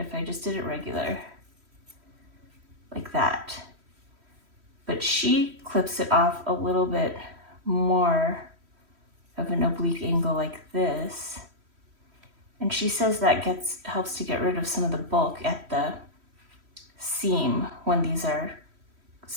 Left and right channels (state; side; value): late; left; 3.1 ms